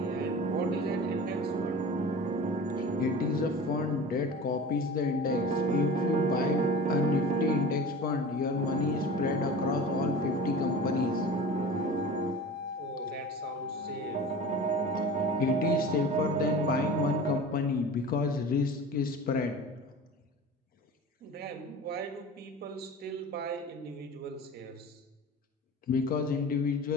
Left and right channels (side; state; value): both; normal; correlation 0.36